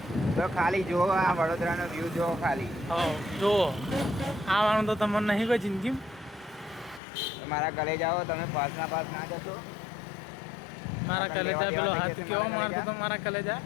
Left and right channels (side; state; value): right; drops out; at 7.0 s